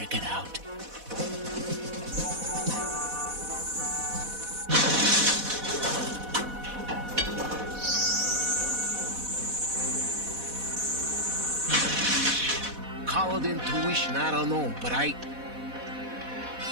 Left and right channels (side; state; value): left; late; 4.1 ms